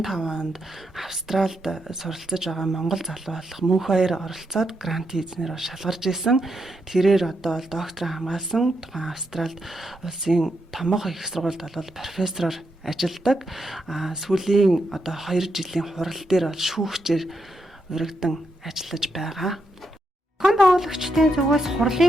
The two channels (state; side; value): normal; both; correlation 0.82